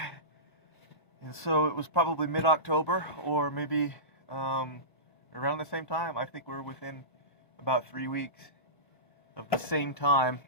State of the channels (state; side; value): late; right; 1.1 ms